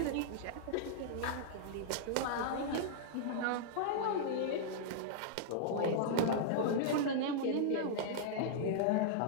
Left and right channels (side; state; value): both; different; correlation -0.02